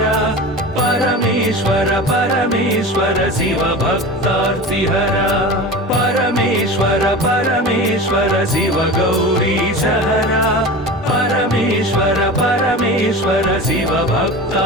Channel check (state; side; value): normal; both; correlation 0.32